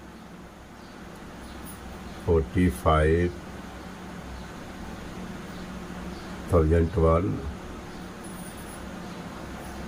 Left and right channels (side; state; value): both; identical; correlation 1.00